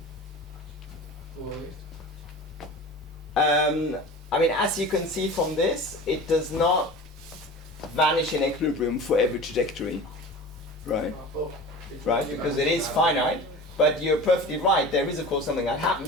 go away? I mean, as you can see from this, it does not vanish in equilibrium for every trajectory, right? Right, because it is finite, but you're perfectly right. There is, of course, something that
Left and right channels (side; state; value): both; normal; correlation 0.36